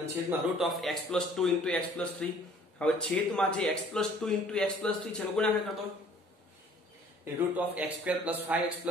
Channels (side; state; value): both; normal; correlation 0.55